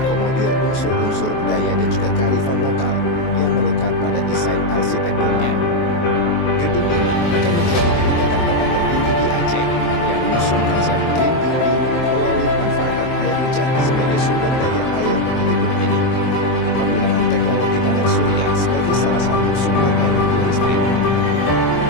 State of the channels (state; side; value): late; right; 23 ms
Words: unsur-unsur budaya dan juga kearifan lokal yang melekat pada desain arsitekturnya. Gedung ini akan menjadi gedung perkantoran tertinggi di Aceh yang mengusung konsep green building melalui pemanfaatan air hujan sebagai sumber daya air di gedung ini. Penggunaan teknologi panel surya sebagai salah satu sumber energi listrik.